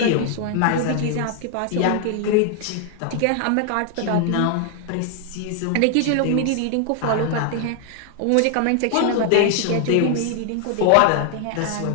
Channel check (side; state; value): both; different; correlation 0.00